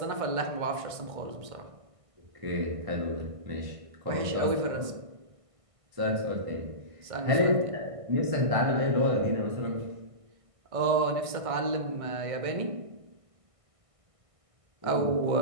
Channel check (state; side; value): late; left; 1.5 ms